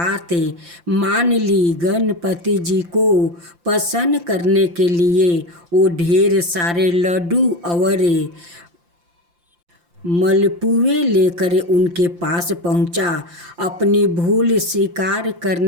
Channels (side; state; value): left; late; 5.8 ms